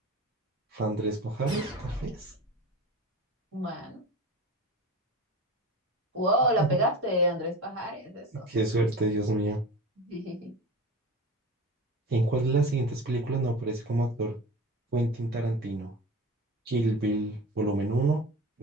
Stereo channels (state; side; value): normal; both; correlation 0.33